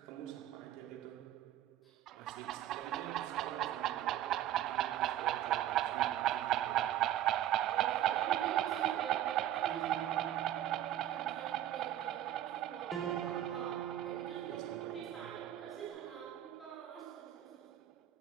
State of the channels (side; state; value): left; quieter; 12.4 dB